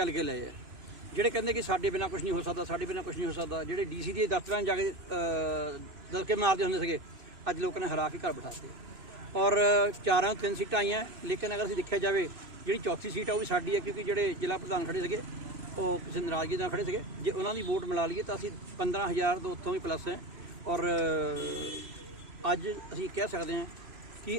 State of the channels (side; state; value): left; late; 3.0 ms